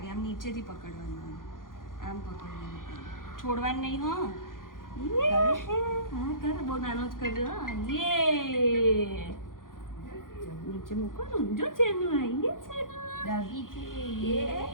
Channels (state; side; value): late; right; 0.90 ms